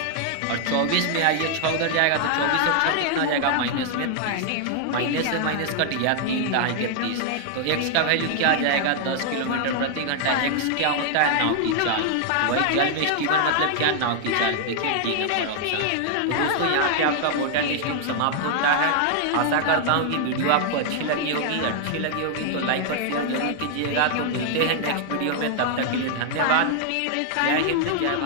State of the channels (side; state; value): both; different; correlation 0.00